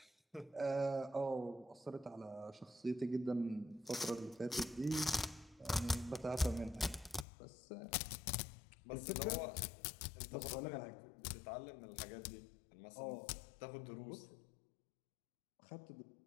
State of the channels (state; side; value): drops out; right; at 7.2 s